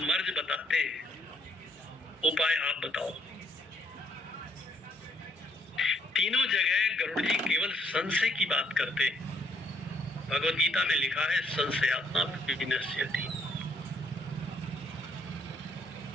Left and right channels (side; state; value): both; normal; correlation 0.69